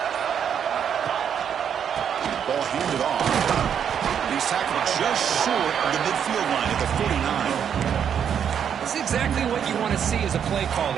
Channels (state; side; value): quieter; left; 8.2 dB